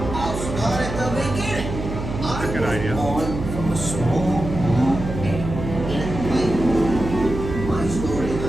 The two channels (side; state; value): right; noise; hum, 6 dB below the sound